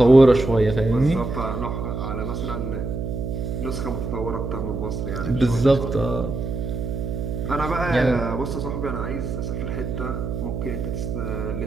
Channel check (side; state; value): right; noise; hum, 4 dB below the sound